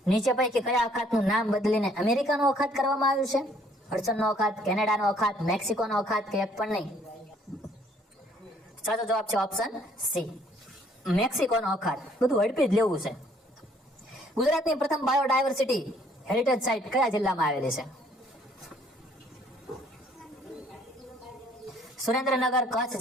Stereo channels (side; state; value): both; normal; correlation 0.62